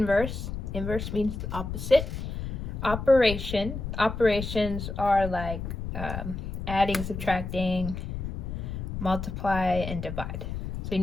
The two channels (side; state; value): left; noise; rumble, 5 dB below the sound